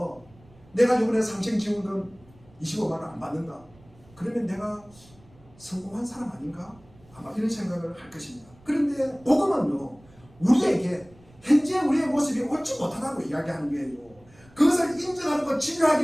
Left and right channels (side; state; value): right; noise; rumble, 27 dB below the sound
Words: 내가 이번에 상생지원금 25만 원 안 받는다. 그러면 내가 성공한 사람 아닌가? 아마 이런 생각을 할 것입니다. 그런데 복음은요, 우리에게 현재 우리의 모습이 옳지 못하다고 이야기하는 거예요. 그것을 인정하고